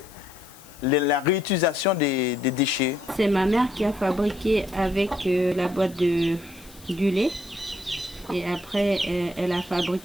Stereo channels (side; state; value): left; noise; hiss, 22 dB below the sound